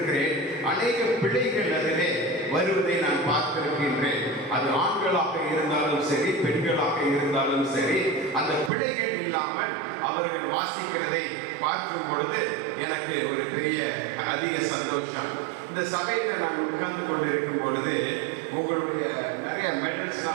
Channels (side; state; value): left; drops out; at 8.7 s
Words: அநேக பிள்ளைகள் அதிலே வருவதை நான் பார்த்திருக்கின்றேன். அது ஆண்களாக இருந்தாலும் சரி, பெண்களாக இருந்தாலும் சரி, அந்த பிள்ளைகள் இல்லாமல் அவர்கள் வாசிக்கிறதை பார்க்கும் பொழுது எனக்கு ஒரு பெரிய அதிக சந்தோஷம். இந்த சபையில் நான் உட்கார்ந்து கொண்டிருக்கும் பொழுது உங்களுடைய நிறைய